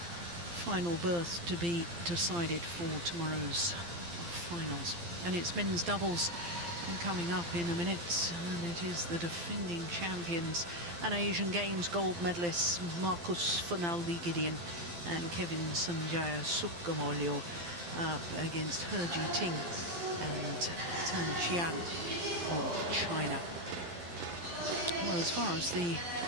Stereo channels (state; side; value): late; left; 12 ms